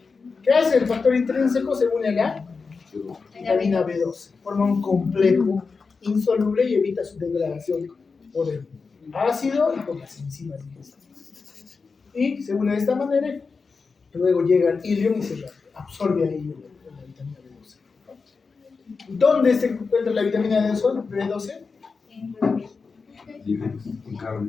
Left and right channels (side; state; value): right; quieter; 4.7 dB